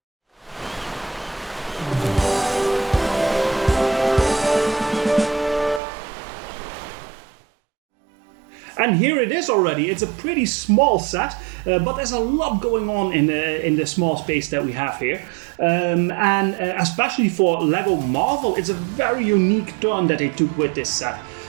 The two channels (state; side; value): drops out; left; at 5.8 s